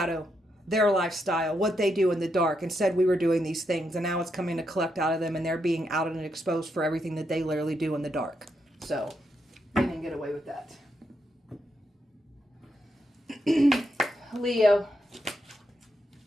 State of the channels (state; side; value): normal; both; correlation 0.81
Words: their lifestyle, what they do in the dark, and said we were doing these things. And now it's coming to collect out of them, and they're being outed and exposed for everything that they literally do in the dark. So they didn't get away with that. Leo.